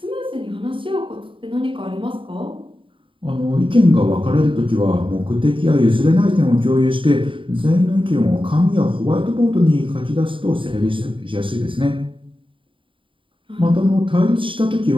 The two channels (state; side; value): late; left; 0.25 ms